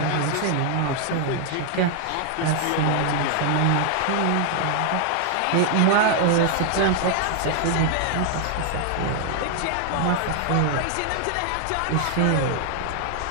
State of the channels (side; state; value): both; different; correlation 0.00